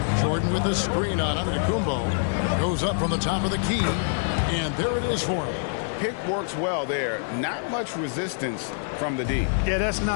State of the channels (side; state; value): right; silent; 60 dB below the other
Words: Jordan with the screen on Antetokounmpo. Goes up from the top of the key, and there it is for him. Pick works well there. Not much resistance from the D. Yeah, that's